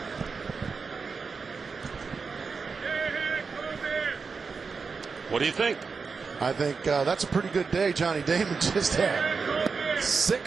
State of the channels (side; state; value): left; quieter; 5.0 dB